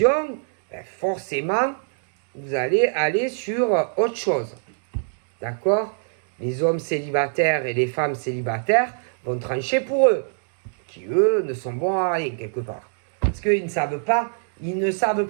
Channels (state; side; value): silent; left; digital silence